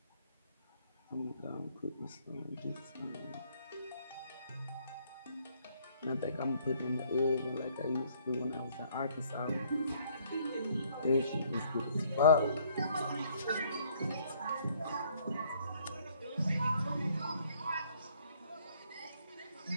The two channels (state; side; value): inverted; both; correlation -0.64